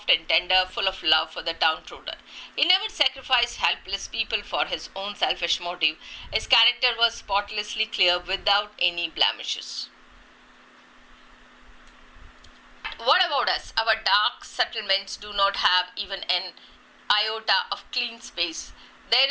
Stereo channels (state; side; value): identical; both; correlation 1.00